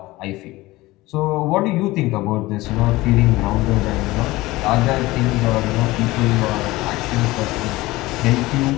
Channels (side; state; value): right; quieter; 19.4 dB